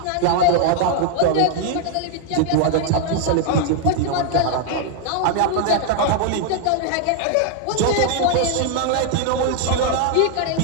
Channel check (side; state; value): both; different; correlation 0.00